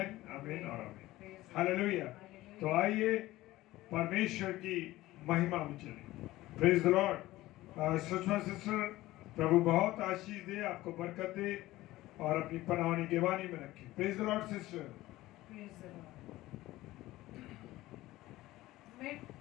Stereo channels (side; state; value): right; quieter; 17.1 dB